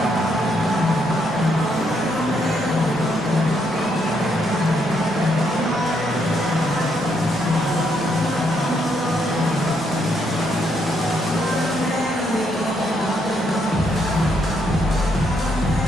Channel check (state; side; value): normal; both; correlation 0.75